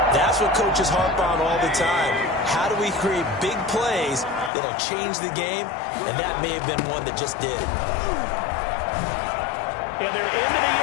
That's what coaches harp on all the time. How do we create big plays that'll change the game? And that may have been one that just did. And they're into the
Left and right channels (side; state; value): right; drops out; at 4.5 s